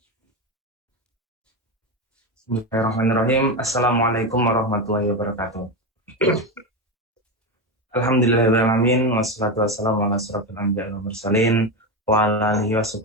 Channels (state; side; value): normal; both; correlation 0.15